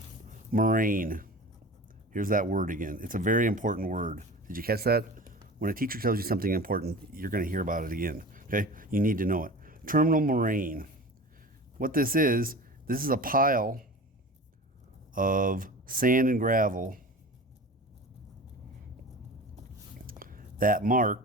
moraine. Here's that word again. It's a very important word. Did you catch that? When a teacher tells you something important, you're going to hear about it again. Okay? You need to know it. Terminal moraine. What this is a pile of sand and gravel that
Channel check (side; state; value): both; normal; correlation 0.36